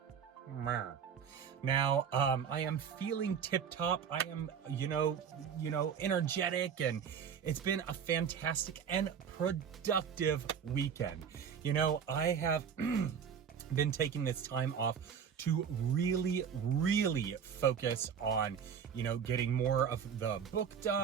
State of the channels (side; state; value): left; quieter; 7.4 dB